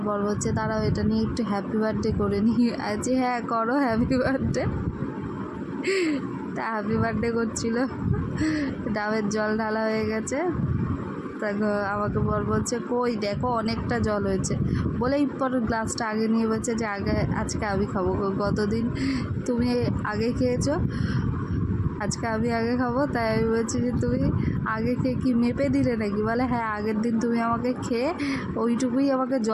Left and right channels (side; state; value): both; identical; correlation 1.00